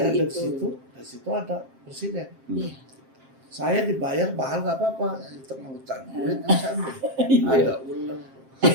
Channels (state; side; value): late; left; 7.5 ms